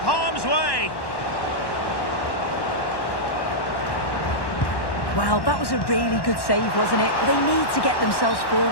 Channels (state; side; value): late; right; 1.1 ms